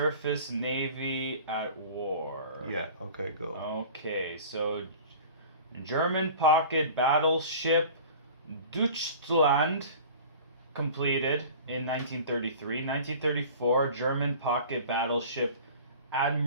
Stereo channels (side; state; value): both; inverted; correlation -0.41